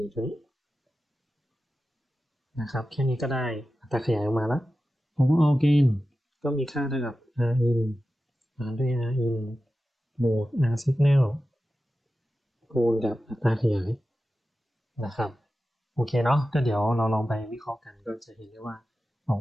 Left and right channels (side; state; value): both; normal; correlation 0.93